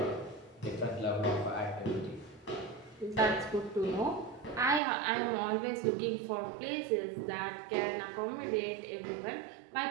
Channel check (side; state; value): left; drops out; at 4.8 s